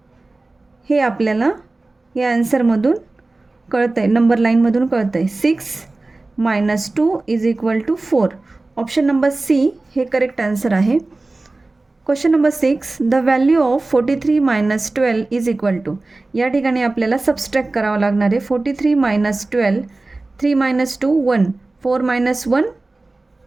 हे आपल्याला या आन्सरमधून कळतं आहे, नंबर लाईनमधून कळतं आहे. 6 minus 2 is equal to 4. Option number C हे करेक्ट आन्सर आहे. Question number 6, the value of 43 minus 12 is equal to. या ठिकाणी आपल्याला सबस्ट्रॅक्ट करावं लागणार आहे. 43 minus 12 3 minus 2 1 4 minus 1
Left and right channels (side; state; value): left; quieter; 3.2 dB